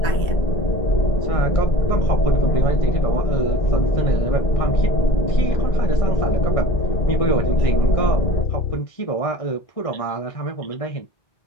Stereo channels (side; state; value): right; late; 1.6 ms